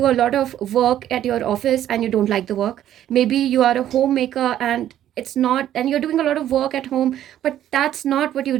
a lot of work at your office and you don't like the work. Maybe you are a homemaker and you're doing a lot of work at home, but that's not what you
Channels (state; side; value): quieter; left; 11.7 dB